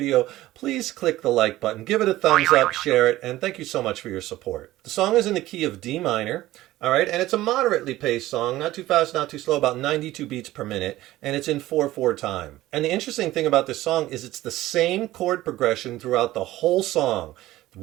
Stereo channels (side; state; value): left; quieter; 16.1 dB